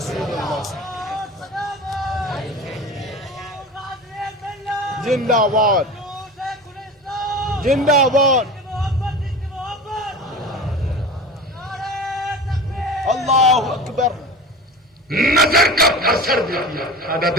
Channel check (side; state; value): both; normal; correlation 0.32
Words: اللہ. زندہ باد، زندہ باد. اللہ اکبر. نظر کا اثر دیکھیے، حضرت